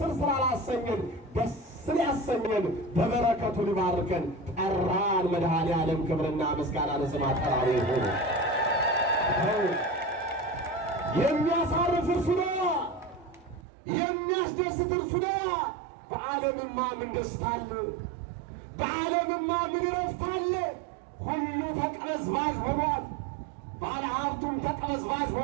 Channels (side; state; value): left; drops out; at 13.7 s